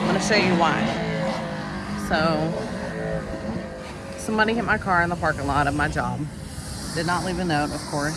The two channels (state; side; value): identical; both; correlation 1.00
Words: gonna show you why. So somebody hit my car in the parking lot of my job. Did not leave a note, of